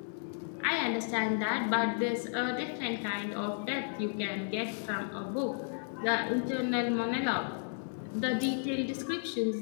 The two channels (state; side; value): silent; right; digital silence